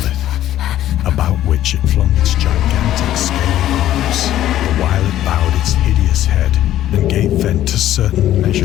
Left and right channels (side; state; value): right; quieter; 12.8 dB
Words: about which it flung its gigantic scaly arms, the while it bowed its hideous head and gave vent to certain